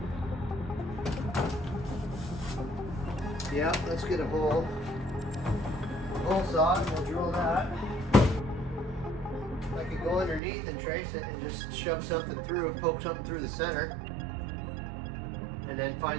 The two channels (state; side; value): drops out; left; at 10.4 s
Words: Yeah, let's get a hole. Hole saw, and we'll drill that. I could go underneath and trace it and just shove something through, poke something through the center, and then